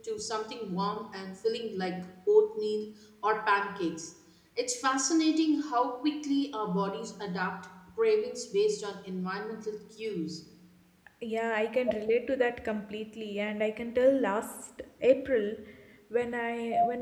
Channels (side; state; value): both; identical; correlation 1.00